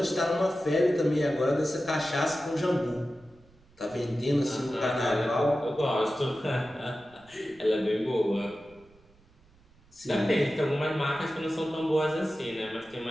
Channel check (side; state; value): right; noise; rumble, 29 dB below the sound